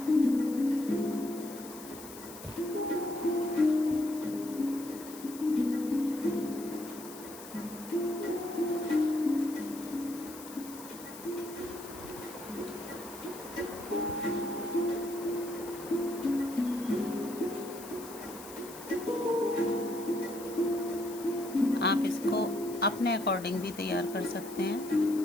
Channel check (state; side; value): noise; left; hiss, 15 dB below the sound